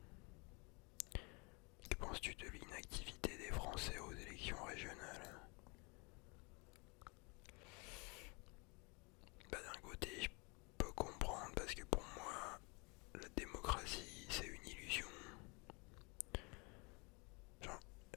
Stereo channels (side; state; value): right; quieter; 30.4 dB